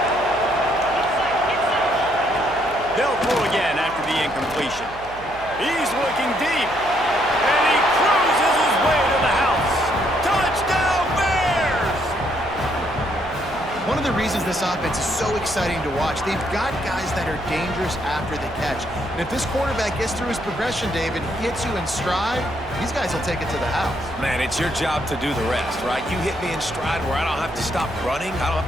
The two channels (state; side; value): noise; right; hum, 18 dB below the sound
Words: They'll throw again after the incompletion. He's looking deep, and he cruises his way to the house. Touchdown, Bears! One of the reasons this offense is so exciting to watch, they've got guys that are dangerous after the catch. And if this quarterback gets through his progression, David, hits you in stride, these guys will take it to the house. Man, it's your job to do the rest, right? You hit me in stride where I don't have to stop running. I don't have